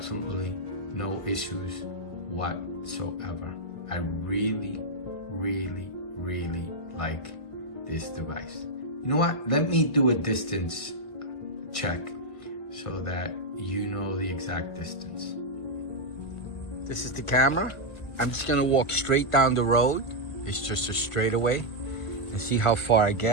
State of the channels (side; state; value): right; late; 1.5 ms